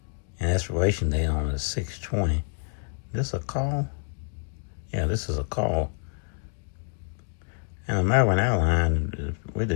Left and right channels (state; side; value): silent; right; digital silence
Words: and expiration date on is 6/20. This a call? Yeah, this is a call. And American Airlines